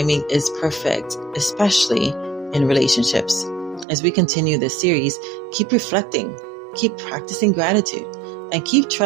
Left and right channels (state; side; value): drops out; left; at 3.9 s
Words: is perfect, especially in relationships. As we continue this series, keep reflecting, keep practicing gratitude, and keep